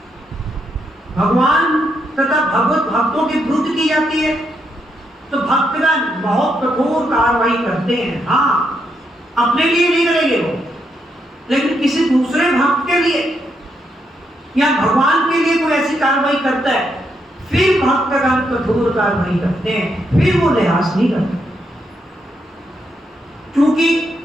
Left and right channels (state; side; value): normal; both; correlation 0.79